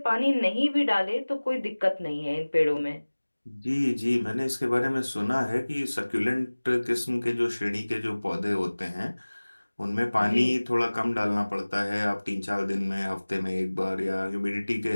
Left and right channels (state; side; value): inverted; both; correlation -1.00